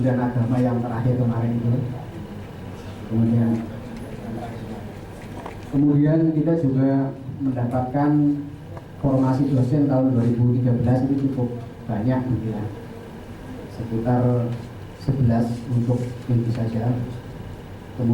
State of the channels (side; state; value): both; identical; correlation 1.00